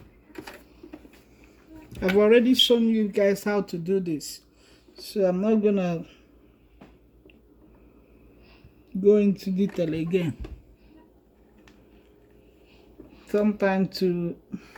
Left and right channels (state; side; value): identical; both; correlation 1.00